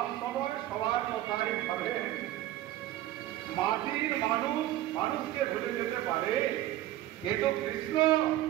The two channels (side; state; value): left; quieter; 14.3 dB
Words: সময় সবার কথাই ভাবে। মাটির মানুষ মানুষকে ভুলে যেতে পারে, কিন্তু কৃষ্ণ